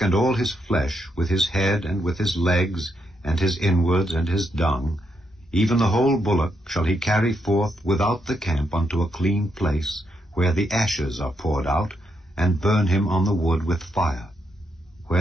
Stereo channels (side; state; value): both; normal; correlation 0.79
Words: and all his flesh, with his head, and with his legs, and his inwards, and his dung, even the whole bullock shall he carry forth without the camp unto a clean place, where the ashes are poured out, and burn him on the wood with fire.